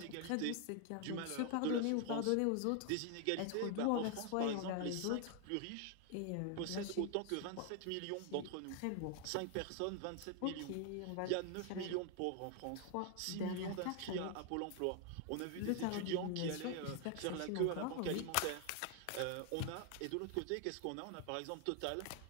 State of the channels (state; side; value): different; both; correlation 0.00